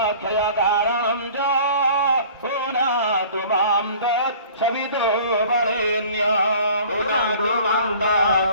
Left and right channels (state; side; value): inverted; both; correlation -0.47